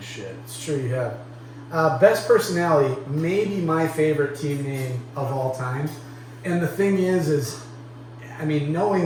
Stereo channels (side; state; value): both; identical; correlation 1.00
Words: shit. It's true you have. Best personality, maybe my favorite team name of all time. And the thing is, I mean,